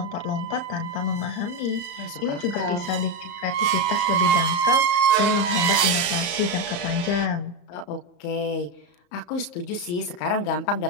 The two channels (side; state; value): right; late; 34 ms